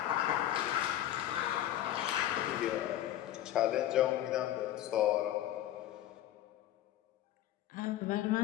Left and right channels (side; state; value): right; quieter; 12.9 dB